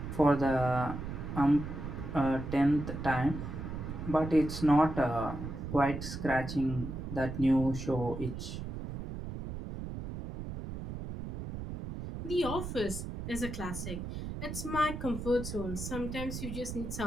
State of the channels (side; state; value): right; noise; rumble, 7 dB below the sound